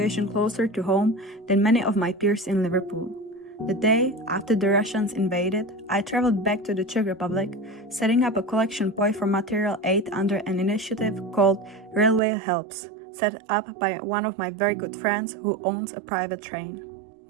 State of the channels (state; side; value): drops out; left; at 12.2 s